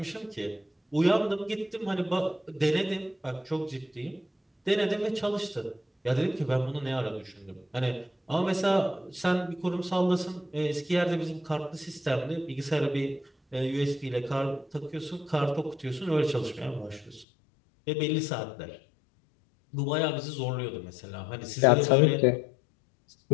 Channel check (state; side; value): drops out; right; at 17.2 s